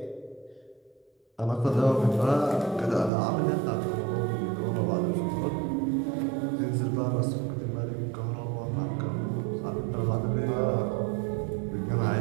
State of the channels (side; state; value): left; drops out; at 3.1 s